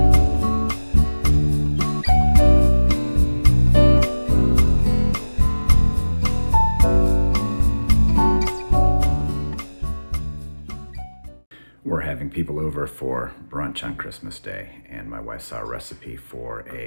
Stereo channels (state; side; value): inverted; both; correlation -1.00